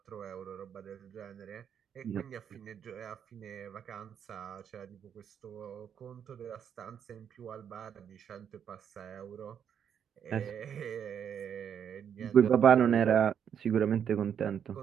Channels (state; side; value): quieter; left; 8.3 dB